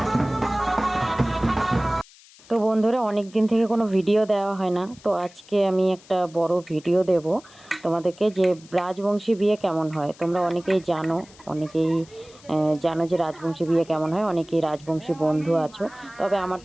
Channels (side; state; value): left; noise; hiss, 24 dB below the sound